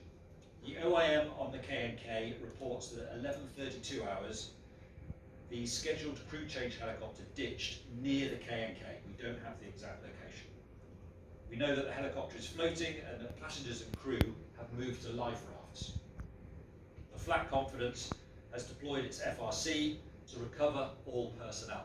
The OIM on the K&K reports that at 11:32 hours, the scheduled crew change helicopter ditched near the K&K. We don't have the exact location. We know that the helicopter is floating and that passengers and crew have moved to life rafts. The Flat Confidence has deployed its FRC to recover all personnel.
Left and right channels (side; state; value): both; identical; correlation 1.00